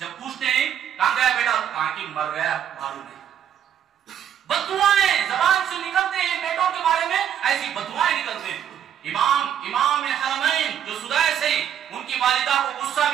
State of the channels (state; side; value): quieter; left; 9.5 dB